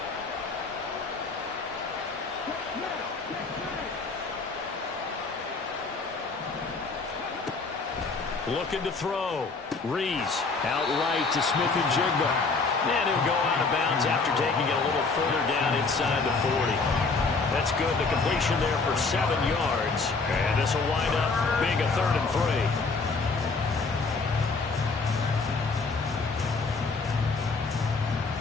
Looking to throw. Rees out right to Smith-Njigba. And he'll go out of bounds after taking it a little further down inside the 40. That's good. The completion there for 7 yards. And this will wind up being a 3rd and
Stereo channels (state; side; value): quieter; right; 4.2 dB